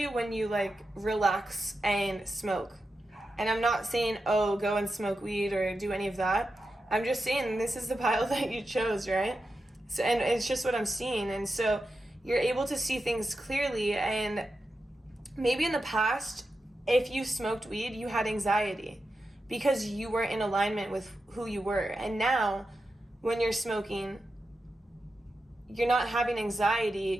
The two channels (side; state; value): both; normal; correlation 0.90